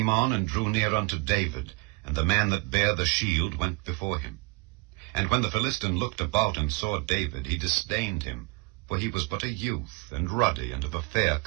on, and drew near unto David, and the man that bare the shield went before him. And when the Philistine looked about and saw David, he disdained him, for he was but a youth, and ruddy, and of a fair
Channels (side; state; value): left; quieter; 27.4 dB